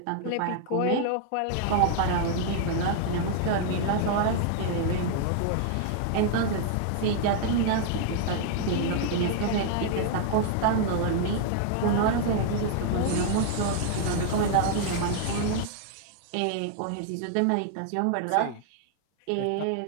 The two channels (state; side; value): different; both; correlation 0.00